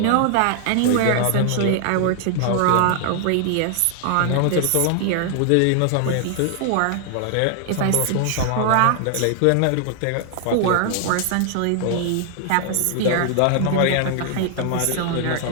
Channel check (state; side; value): different; both; correlation 0.00